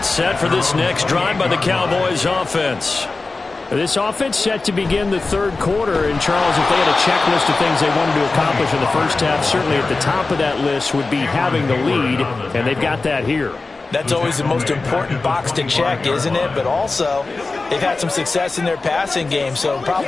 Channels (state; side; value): quieter; right; 3.7 dB